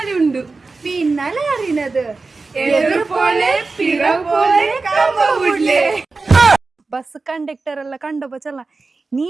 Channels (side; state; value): left; quieter; 3.9 dB